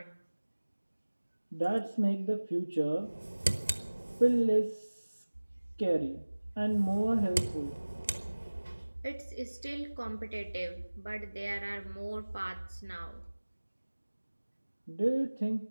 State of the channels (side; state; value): both; inverted; correlation -1.00